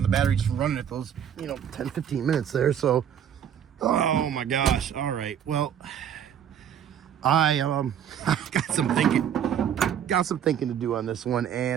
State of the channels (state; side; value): quieter; left; 9.1 dB